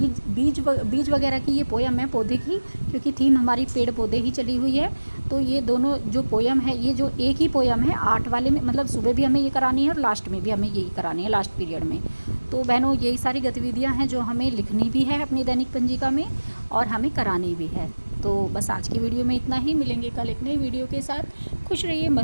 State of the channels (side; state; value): both; inverted; correlation -1.00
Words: वगैरह की ये पोयम है, पौधे की, क्योंकि थीम हमारी पेड़ पौधे ही चली हुई है। तो ये दोनों जो पोयम है, ये जो एक ही पोयम है 8 वाले में, मतलब सुबह भी हमें ये करानी है और लास्ट में भी हमें यही करानी है, लास्ट पीरियड में। तो बहनों यही सारी गतिविधियां हैं जो हमें लिखनी भी है अपनी दैनिक पंजिका में और हमें करानी भी है। तो बस आज की वीडियो में इतना ही। मिलेंगे कल एक नई वीडियो के साथ। खुश रहिए,